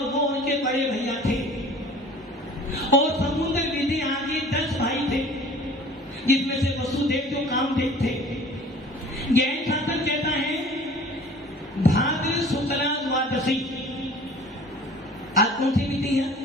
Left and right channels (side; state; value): both; normal; correlation 0.46